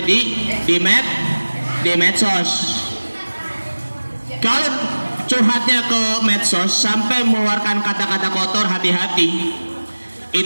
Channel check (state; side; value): inverted; both; correlation -1.00